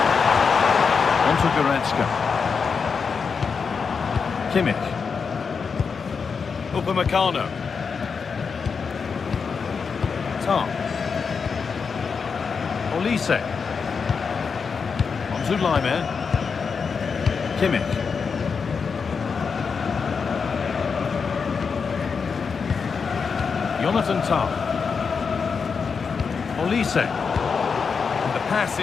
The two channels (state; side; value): quieter; right; 5.6 dB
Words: Onto Goretzka. Kimmich. Upamecano. Tah. Olise. Onto Lyman. Kimmich. Jonathan Tah. Olise. The pass